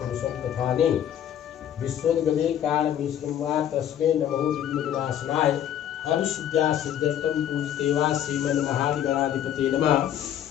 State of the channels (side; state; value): right; quieter; 10.4 dB